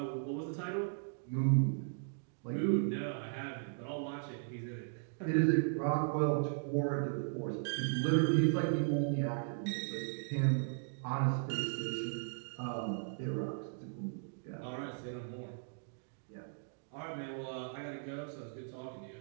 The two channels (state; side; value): silent; left; digital silence